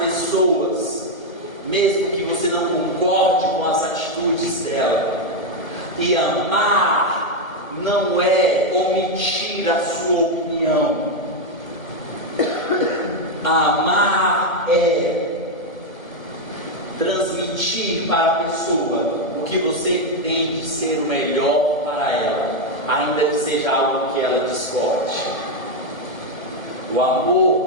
mesmo que você não concorde com as atitudes dela. E amar não é omitir a sua opinião. Amar é transmitir para a pessoa o que você entende ser o melhor para ela, ainda que seja algo que ela discorde. O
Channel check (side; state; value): right; late; 1.2 ms